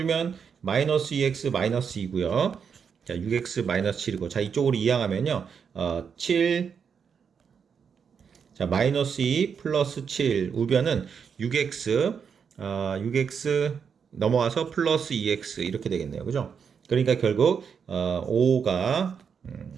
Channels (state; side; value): quieter; left; 6.7 dB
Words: 마이너스 2x 마이너스 2고요. 자, 6x 마이너스 7이고 자, 이쪽으로 이항하면요. 7 자, 마이너스 2 플러스 7 우변은 6x 넘어와서 플러스 2x 이렇게 되겠네요. 그죠? 그러니까 결국 5가